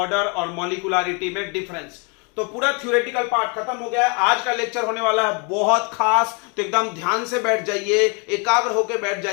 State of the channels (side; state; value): right; quieter; 33.9 dB